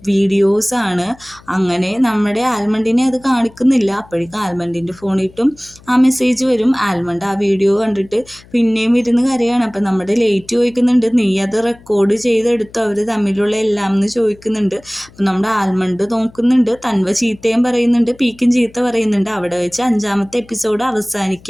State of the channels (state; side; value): noise; left; hum, 25 dB below the sound